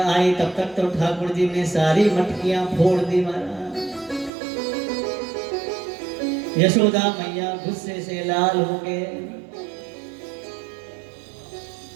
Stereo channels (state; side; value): drops out; left; at 4.3 s